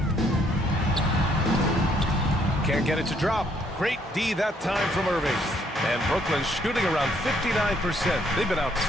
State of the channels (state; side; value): normal; both; correlation 0.68